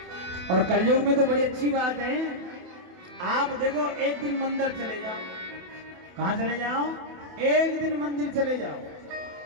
और कलयुग में तो बड़ी अच्छी बात है, आप देखो एक दिन मंदिर चले जाओ। कहां चले जाओ? एक दिन मंदिर चले जाओ,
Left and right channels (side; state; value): left; late; 28 ms